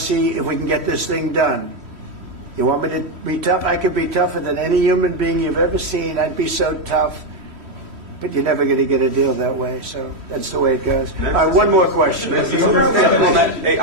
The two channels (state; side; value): late; left; 3.1 ms